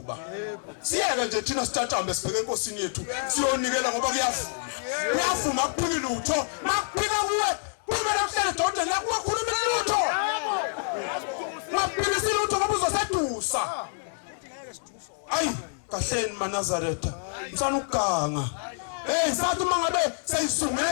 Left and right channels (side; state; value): right; silent; digital silence